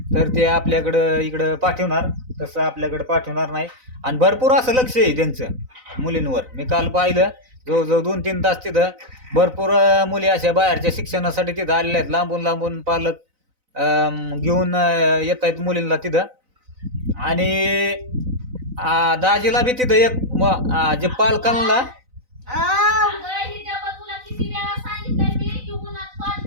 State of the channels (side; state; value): left; late; 4.0 ms